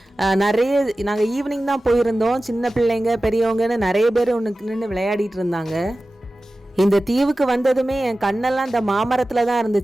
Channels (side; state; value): both; normal; correlation 0.95